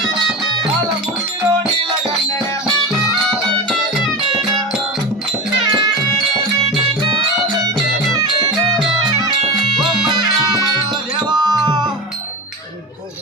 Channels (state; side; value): normal; both; correlation 0.26